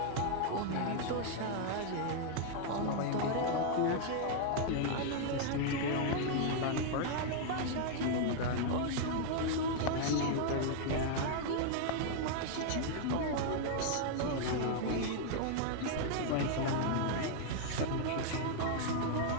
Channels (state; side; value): different; both; correlation 0.00